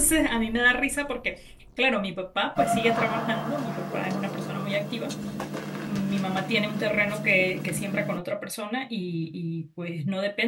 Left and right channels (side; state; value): both; identical; correlation 1.00